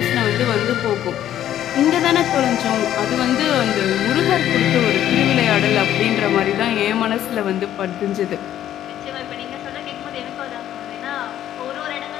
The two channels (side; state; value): right; quieter; 11.6 dB